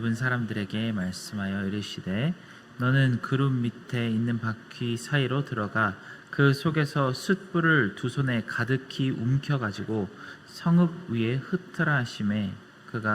사람들에게 말씀하여 이르시되 너는 그룹 밑에 있는 바퀴 사이로 들어가 그 속에서 숯불을 두 손에 가득히 움켜가지고 성읍 위에 흩으라 하시매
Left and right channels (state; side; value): identical; both; correlation 1.00